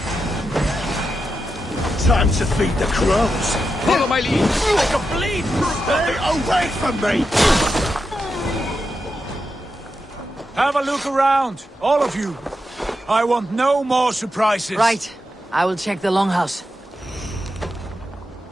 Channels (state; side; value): normal; both; correlation 0.87